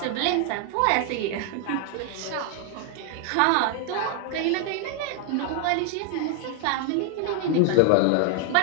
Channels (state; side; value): different; both; correlation 0.00